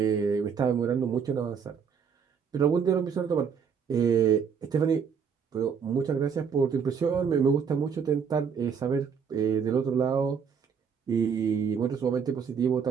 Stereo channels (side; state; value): left; quieter; 6.7 dB